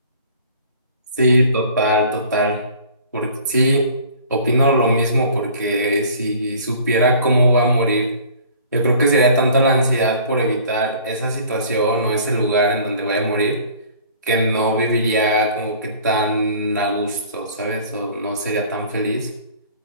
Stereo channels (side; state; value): both; inverted; correlation -0.49